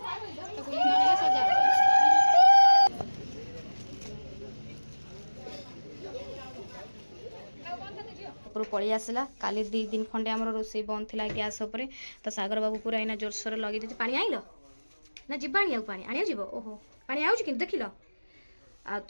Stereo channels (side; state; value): both; inverted; correlation -1.00